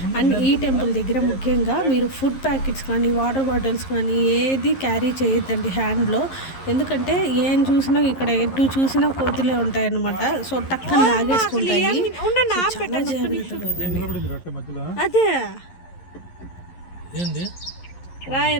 అండ్ ఈ టెంపుల్ దగ్గర ముఖ్యంగా మీరు ఫుడ్ ప్యాకెట్స్ కానీ వాటర్ బాటిల్స్ కానీ ఏది క్యారీ చేయొద్దండి హ్యాండ్లో. ఎందుకంటే ఏం చూసినా ఇక్కడ ఎటు చూసినా కోతులే ఉంటాయి అన్నమాట. సో టక్కన లాగేసుకుంటాయి. అదే రాయ్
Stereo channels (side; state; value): right; late; 11 ms